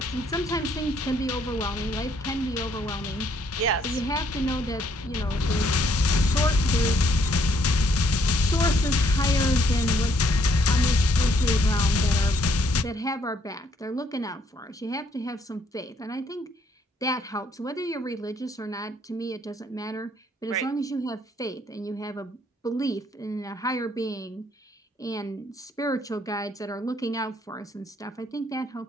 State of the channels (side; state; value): both; normal; correlation 0.68